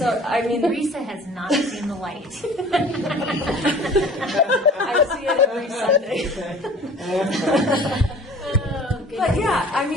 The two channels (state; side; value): normal; both; correlation 0.47